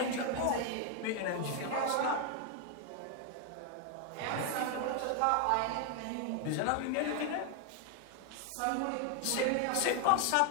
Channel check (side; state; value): both; different; correlation 0.00